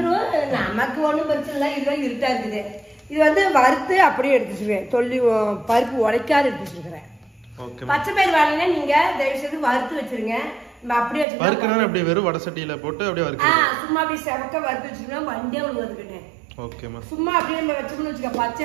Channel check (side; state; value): left; drops out; at 11.2 s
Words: நமக்கு ஒண்ணும் பிரச்சனை இல்லை. இதுதான் இருட்டா இருக்குது. இது வந்து வறுத்து அப்படியே எடுத்து வச்சிருக்கேன். தொல்லி பருப்பு உடைக்காது எடுத்து வச்சிருக்கிறேன். பச்சை பயிர் வாங்கினா நீங்க தயவு செய்து வறுத்து வச்சிருங்க. அப்படியே அப்படியே வெறும் வடை சட்டியில போட்டு அப்படியே சும்மா அப்படியே செவக்க வறுத்து வச்சுக்கோங்க. வண்டே விழுந்துருக்கேன். சும்மா அப்படியே நம்ம வச்சோம்னு வச்சுக்க, பச்சை